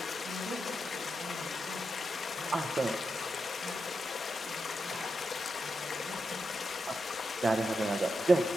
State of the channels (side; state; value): both; normal; correlation 0.87